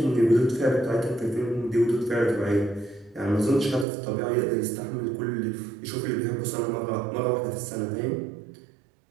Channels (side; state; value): left; drops out; at 3.9 s